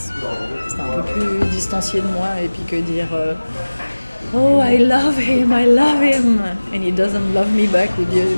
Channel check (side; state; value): both; inverted; correlation -1.00